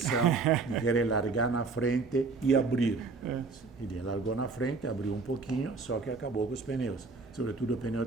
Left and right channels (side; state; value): left; quieter; 4.2 dB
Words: de querer largar na frente e abrir. Ele largou na frente, abriu um pouquinho, só que acabou com os pneus, sobretudo o pneu